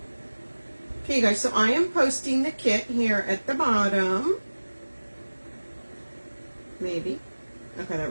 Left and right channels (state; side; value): inverted; both; correlation -1.00